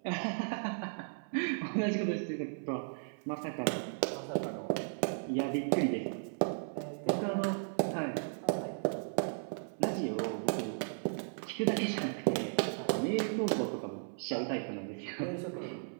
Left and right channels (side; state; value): left; silent; 54 dB below the other